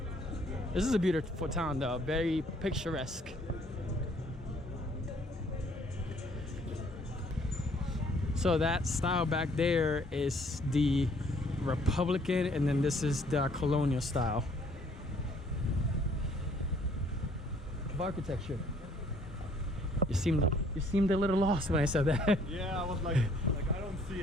This is a beautiful town though, very picturesque. So that style back there is the Republican, and then this is the colonial style of architecture. You seemed a little lost when I said that. Yeah, I was like I don't see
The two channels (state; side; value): normal; both; correlation 0.61